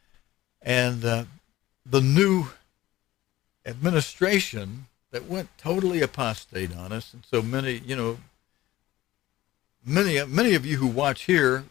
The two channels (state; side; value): quieter; right; 16.0 dB